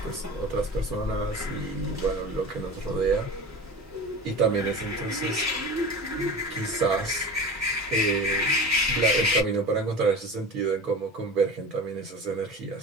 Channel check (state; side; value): normal; both; correlation 0.34